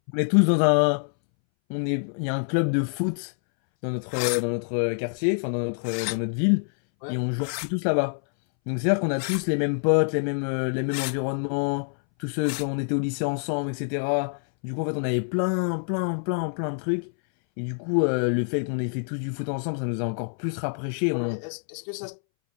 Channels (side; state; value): right; silent; 61 dB below the other